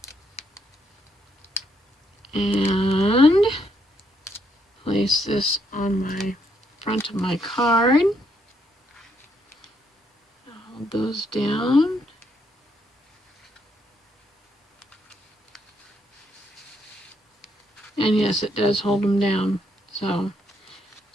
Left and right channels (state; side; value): normal; both; correlation 0.74